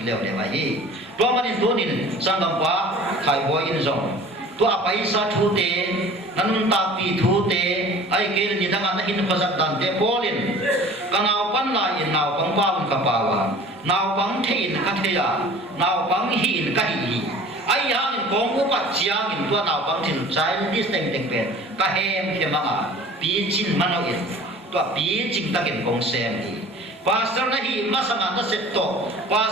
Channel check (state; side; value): normal; both; correlation 0.44